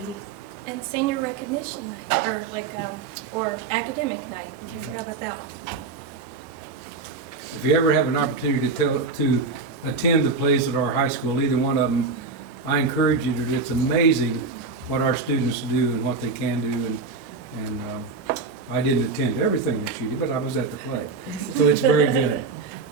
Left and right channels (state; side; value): quieter; left; 4.2 dB